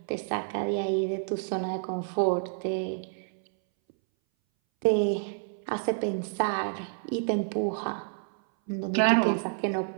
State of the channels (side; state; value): left; silent; 59 dB below the other